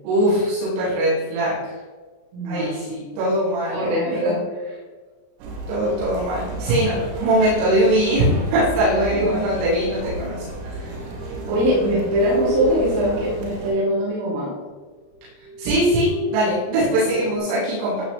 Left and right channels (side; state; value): left; late; 34 ms